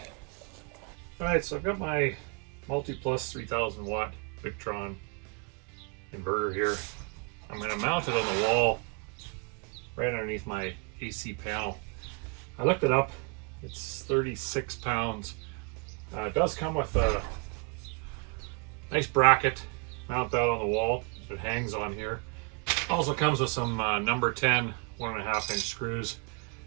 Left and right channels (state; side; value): quieter; left; 34.6 dB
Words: Alright, so I've got my MultiPlus 3000 watt Victron inverter here. I'm going to mount it on the wall right underneath my AC panel. I looked it up. It's 36 pounds. It does come with a nice bracket. Mount that on the wall. It hangs on here. Also comes with some number 10 1.5 inch screws.